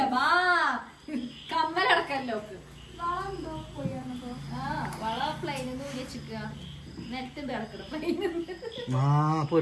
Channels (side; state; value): both; identical; correlation 1.00